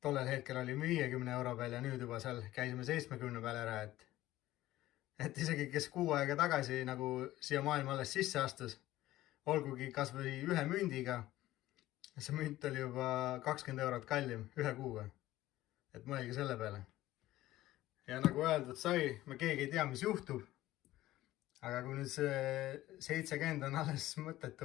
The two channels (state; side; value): quieter; right; 15.7 dB